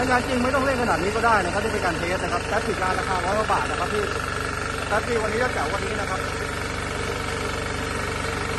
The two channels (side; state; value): both; identical; correlation 1.00